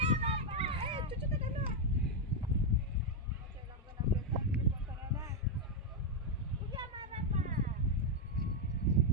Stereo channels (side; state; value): both; normal; correlation 0.01